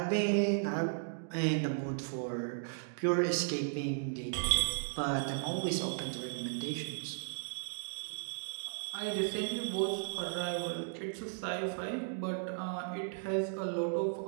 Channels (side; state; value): left; silent; digital silence